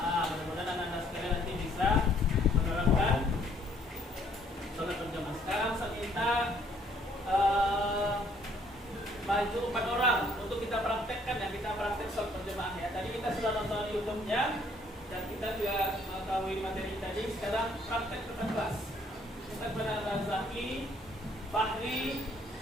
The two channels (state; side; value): normal; both; correlation 0.64